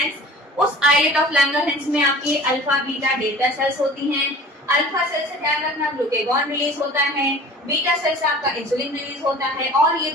उस आइलेट ऑफ लैंगरहैंस में आपकी अल्फा बीटा डेल्टा सेल्स होती हैं। अल्फा सेल से ध्यान रखना ग्लूकेगॉन रिलीज होता है, बीटा सेल से आपका इंसुलिन रिलीज होता है, और ये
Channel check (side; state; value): both; normal; correlation 0.42